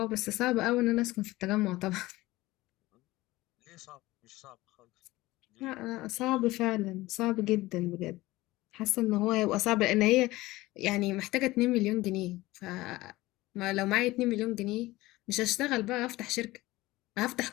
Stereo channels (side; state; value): right; quieter; 18.8 dB